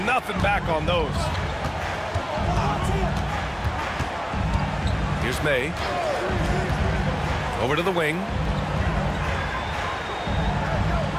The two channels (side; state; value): both; identical; correlation 1.00